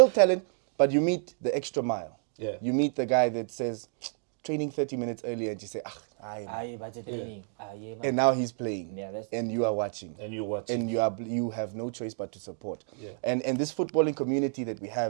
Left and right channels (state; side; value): silent; left; 58 dB below the other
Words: talent, but you meet the extra mile. You meet the guy that says, training 30 minutes earlier, and you say, and now he's playing, and you are watching. And you have no choice but to support. And this footballing community that we